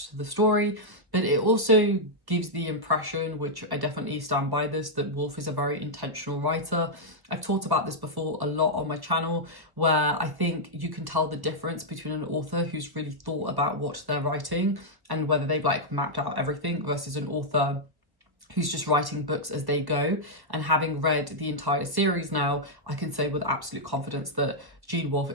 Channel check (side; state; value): left; late; 1.0 ms